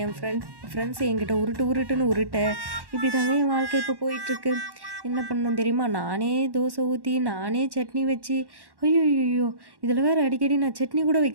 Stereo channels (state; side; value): late; left; 1.1 ms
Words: என் ஃப்ரெண்ட்ஸ் என்கிட்ட உருட்டுன்னு உருட்ட, இப்படி தாங்க என் வாழ்க்கை இப்போ போயிட்டுருக்கு. என்ன பண்ணணும் தெரியுமா? நானே தோசை ஊற்றி நானே சட்னி வச்சு, ஐயோ இதில் வேறு அடிக்கடி நான் சட்னி கூட